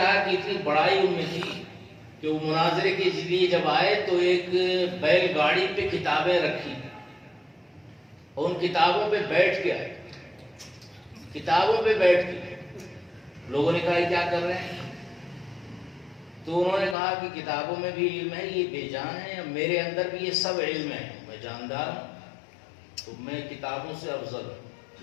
کہ اتنی بڑائی ان میں تھی کہ وہ مناظرے کے لیے جب آئے تو ایک بیل گاڑی پہ کتابیں رکھی اور ان کتابوں پہ بیٹھ کے آئے، کتابوں پہ بیٹھ کے لوگوں نے کہا یہ کیا کر رہے ہیں؟ تو انہوں نے کہا کہ کتابوں میں بھی علم ہے، یہ بے جان ہے، میرے اندر بھی یہ سب علم ہے، میں جاندار ہوں، تو میں کتابوں سے افضل ہوں۔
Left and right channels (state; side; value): drops out; right; at 16.9 s